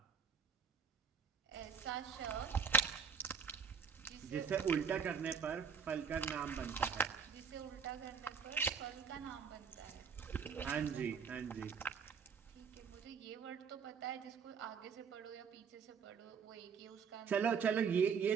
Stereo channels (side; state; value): left; quieter; 6.4 dB